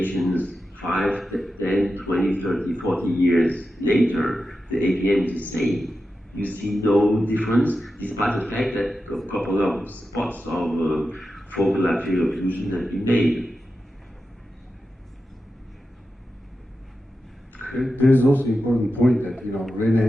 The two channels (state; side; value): normal; both; correlation 0.91